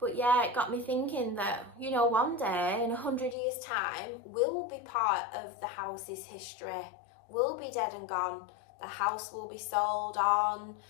yeah, it got me thinking that, you know, one day in 100 years time, we'll be part of the house's history. We'll be dead and gone. The house will be sold on,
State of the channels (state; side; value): drops out; right; at 3.4 s